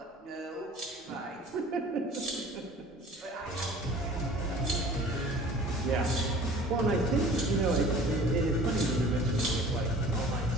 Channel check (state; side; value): normal; both; correlation 0.46